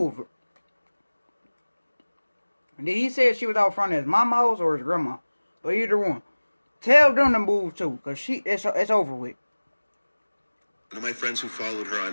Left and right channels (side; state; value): both; inverted; correlation -1.00